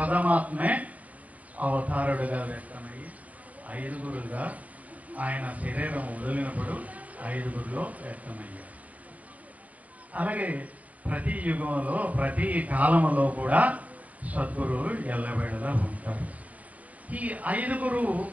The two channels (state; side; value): late; left; 0.071 ms